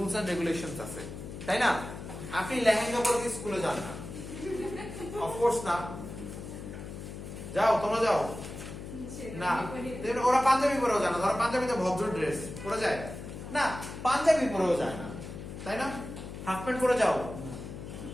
এন্ড রেগুলেশনস আছে, তাই না? আপনি লেহেঙ্গা পরে কি স্কুলে যান না? অফকোর্স না। যাও, তোমরা যাও না? ওরা পাঞ্জাবি পরেও যায় না। ধরো পাঞ্জাবিতে ভদ্র ড্রেস পরে যায় না, পাঞ্জাবি পরেও যায় না, তাই না? হাফ প্যান্ট পরে যাও,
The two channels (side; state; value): left; noise; hum, 10 dB below the sound